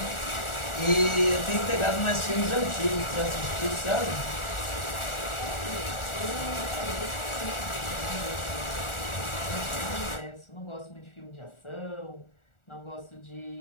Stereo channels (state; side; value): late; right; 1.4 ms